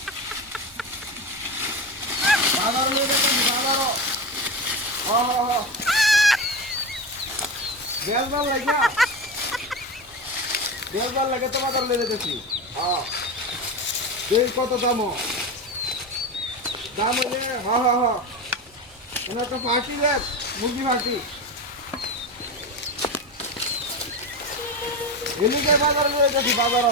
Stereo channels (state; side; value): normal; both; correlation 0.22